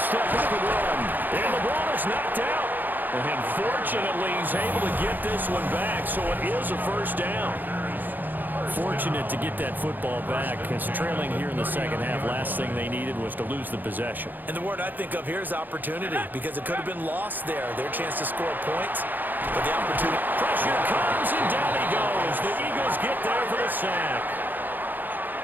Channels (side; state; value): left; late; 0.087 ms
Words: step up and run. And the ball is knocked out. And fortunately, he's able to get this one back, so it is a first down. Fortunate to get that football back, because trailing here in the 2nd half, last thing they needed was to lose the possession. And the word I think of here is opportunity, because it could have been lost there, their chance to score points, but the opportunity. Pressure comes, and down he goes. The Eagles get there for the sack.